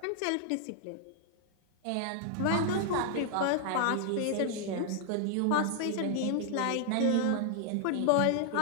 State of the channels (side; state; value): both; different; correlation 0.00